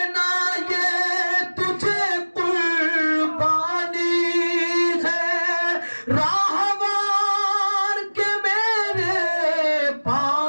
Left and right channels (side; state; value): both; inverted; correlation -1.00